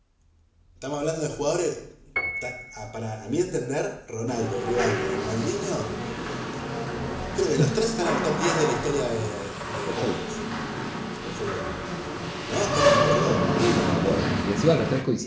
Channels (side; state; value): both; identical; correlation 1.00